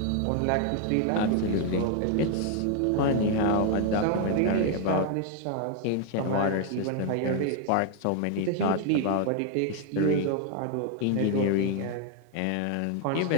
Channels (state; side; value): different; both; correlation 0.00